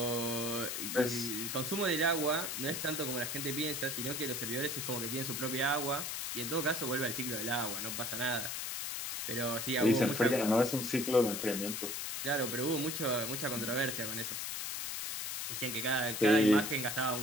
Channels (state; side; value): noise; left; hiss, 3 dB below the sound